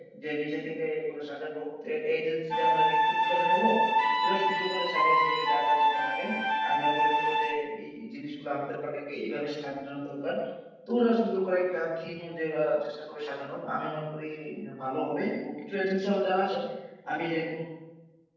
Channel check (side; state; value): both; identical; correlation 1.00